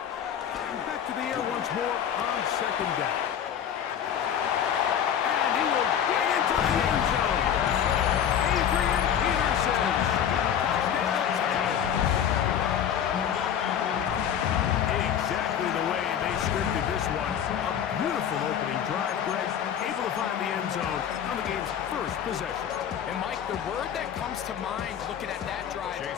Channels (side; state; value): right; quieter; 9.1 dB